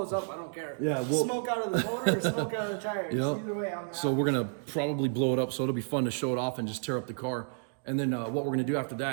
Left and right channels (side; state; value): left; silent; digital silence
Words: up, I don't care. Yeah, smoke out of the motor or smoke out of the tires. Yep. Either way, I'm happy. So we're gonna probably blow it up, so it'll be fun to show it off and just tear up the car. And then what we're gonna do after